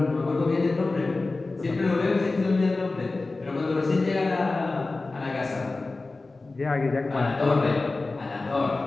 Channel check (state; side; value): quieter; right; 3.4 dB